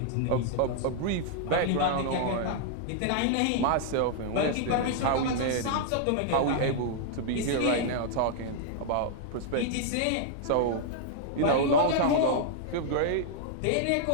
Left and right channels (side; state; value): both; different; correlation -0.01